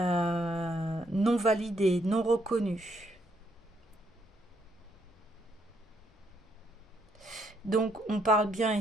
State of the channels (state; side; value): normal; both; correlation 0.73